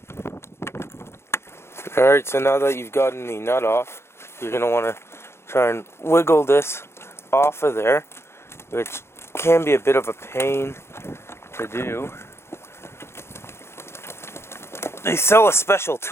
Alright, so now that you've gotten the nut off, you're going to want to try and wiggle this off of there, which can be a bit of a pain to do. They sell a special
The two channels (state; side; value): late; right; 0.12 ms